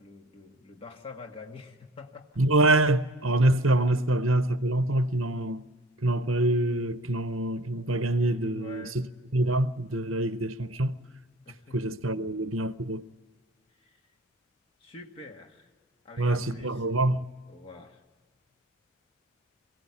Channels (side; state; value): both; normal; correlation 0.49